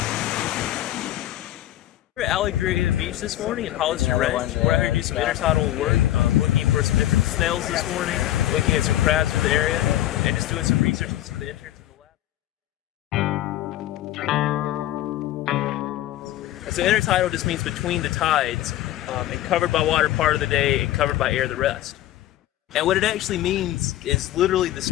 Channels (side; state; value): right; quieter; 13.9 dB